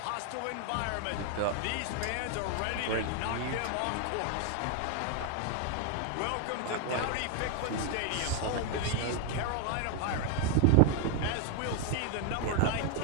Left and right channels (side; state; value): both; different; correlation 0.01